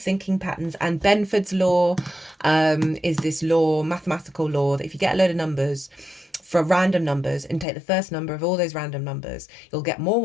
patterns, and Benford's law is this law, mathematical law, that if you get a load of numbers, for random numbers, and take the first number of all those random numbers, you'll get more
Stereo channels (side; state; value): right; drops out; at 7.7 s